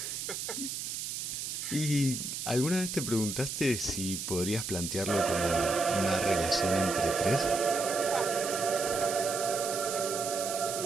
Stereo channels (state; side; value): noise; right; hiss, 5 dB below the sound